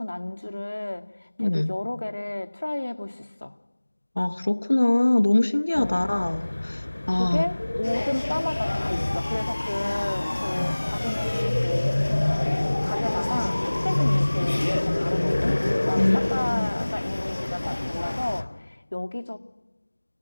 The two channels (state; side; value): inverted; both; correlation -1.00